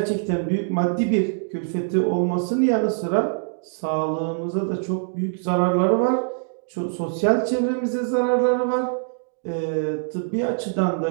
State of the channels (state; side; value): silent; left; digital silence